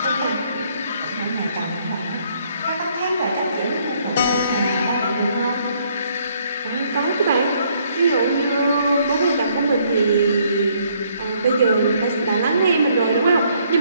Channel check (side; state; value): both; inverted; correlation -0.67